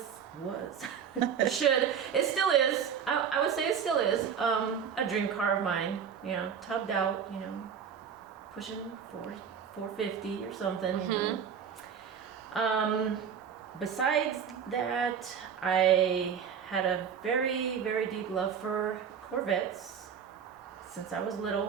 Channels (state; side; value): quieter; left; 7.5 dB